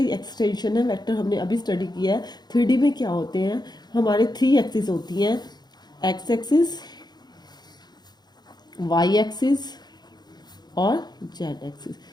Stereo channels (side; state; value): right; late; 0.20 ms